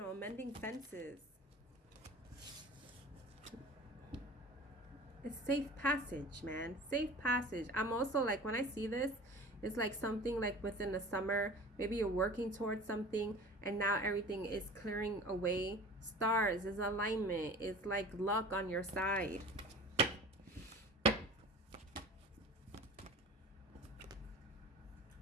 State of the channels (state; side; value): normal; both; correlation 0.39